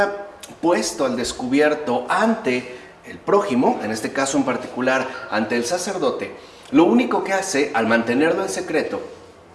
puesto al descubierto ante el prójimo, en este caso en particular ante el sacerdote, lo único que hace al mantenerlo en secreto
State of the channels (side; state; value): both; identical; correlation 1.00